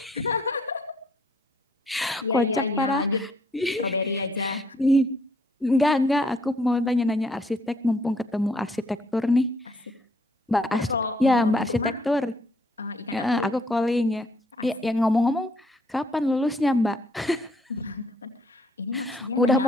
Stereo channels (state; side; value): normal; both; correlation 0.66